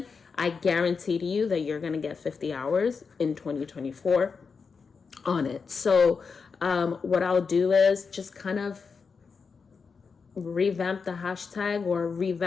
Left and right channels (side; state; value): right; quieter; 5.3 dB